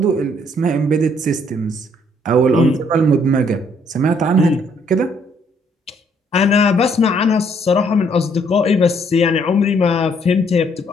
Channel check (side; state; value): both; normal; correlation 0.67